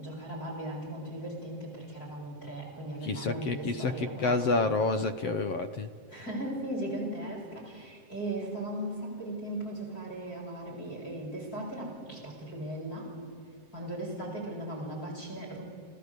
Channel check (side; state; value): right; late; 7.6 ms